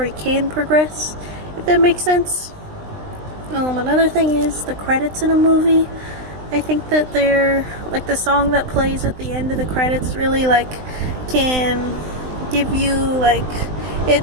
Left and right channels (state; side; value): late; left; 20 ms